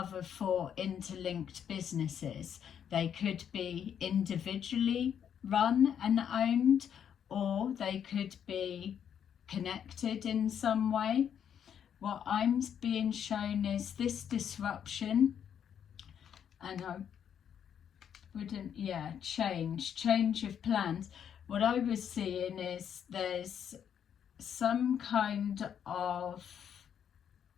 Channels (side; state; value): right; quieter; 8.6 dB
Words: 4 interlinked businesses. They could be individually run and owned, or they could be connected in some way. What I'm being shown is this disruption, and I wouldn't, change of plans. What I was seeing is there's some kind of